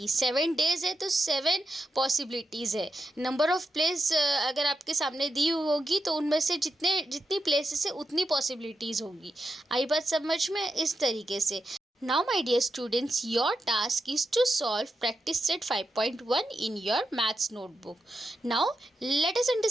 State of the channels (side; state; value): both; normal; correlation 0.86